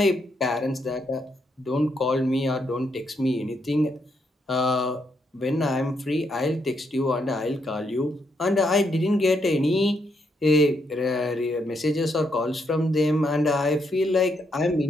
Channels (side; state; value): both; normal; correlation 0.77